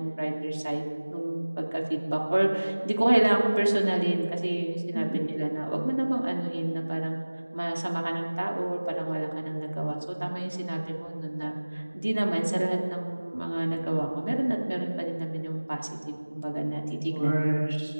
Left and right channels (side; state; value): both; inverted; correlation -1.00